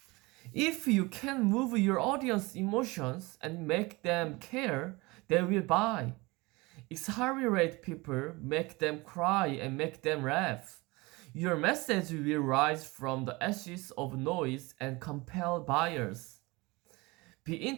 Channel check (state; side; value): quieter; left; 23.8 dB